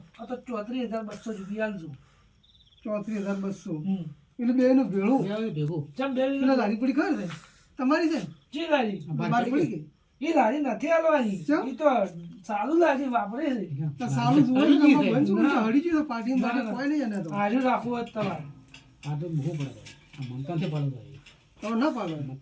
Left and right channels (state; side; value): identical; both; correlation 1.00